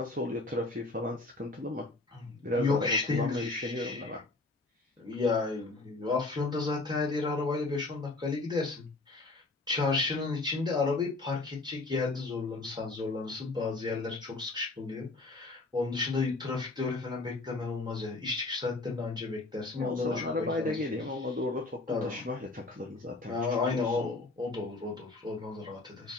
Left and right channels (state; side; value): quieter; right; 3.2 dB